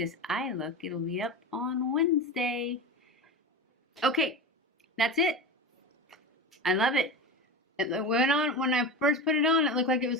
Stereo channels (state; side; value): normal; both; correlation 0.26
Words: eye look, it'll be up on Wednesday. Okay, that's it. I love it. It went on, when I first put it on, it looked like it